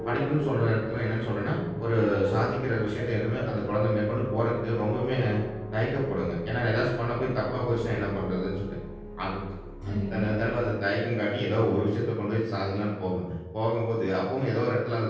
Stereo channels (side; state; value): both; identical; correlation 1.00